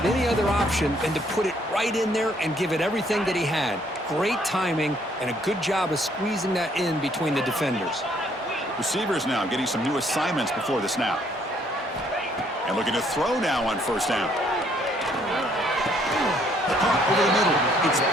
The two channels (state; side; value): normal; both; correlation 0.66